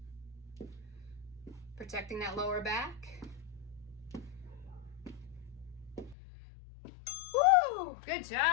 Protecting that lower back. Woo! Good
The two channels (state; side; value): drops out; right; at 6.2 s